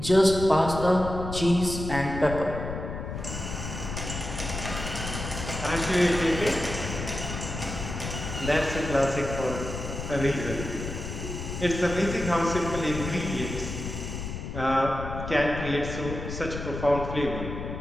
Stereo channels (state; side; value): noise; left; rumble, 7 dB below the sound